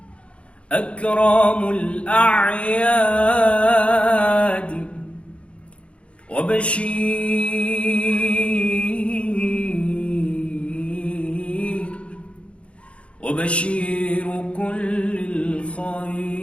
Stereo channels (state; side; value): late; right; 0.060 ms